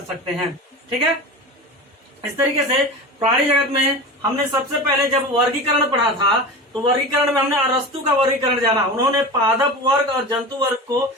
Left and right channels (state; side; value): normal; both; correlation 0.30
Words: सकते हैं। ठीक है, इस तरीके से प्राणी जगत में हमने सबसे पहले जब वर्गीकरण पढ़ा था तो वर्गीकरण में हमने अरस्तु का वर्गीकरण जाना। उन्होंने पादप वर्ग और जंतु वर्ग को